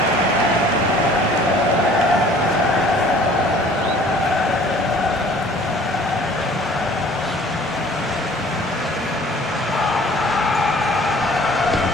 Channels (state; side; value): normal; both; correlation 0.52